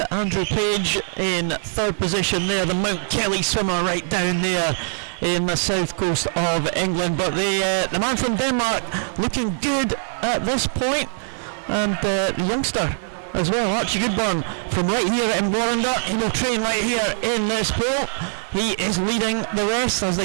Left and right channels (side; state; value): left; silent; 64 dB below the other